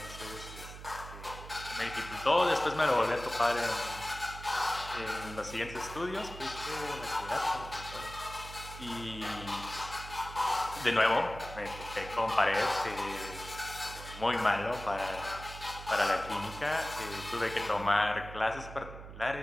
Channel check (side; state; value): right; noise; hum, 13 dB below the sound